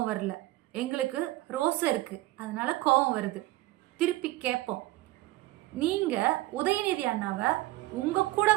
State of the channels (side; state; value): left; quieter; 18.0 dB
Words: வரல. எங்களுக்கு ரோசம் இருக்கு, அதனால கோபம் வருது. திருப்பி கேட்போம், நீங்க உதயநிதி அண்ணாவை உங்க கூட